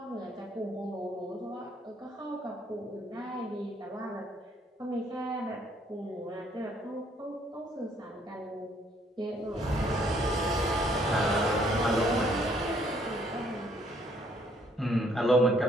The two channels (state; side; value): normal; both; correlation 0.66